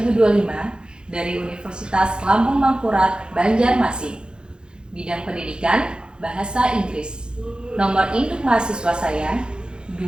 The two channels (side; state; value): left; late; 0.049 ms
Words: dari Universitas Lampung Mangkurat, Banjarmasin. Bidang pendidikan Bahasa Inggris. Nomor induk mahasiswa saya